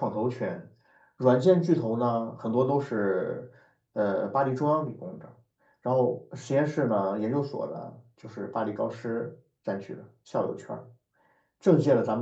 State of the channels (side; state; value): both; identical; correlation 1.00